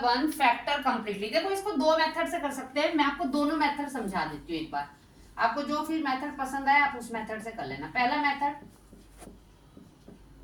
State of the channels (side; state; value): both; identical; correlation 1.00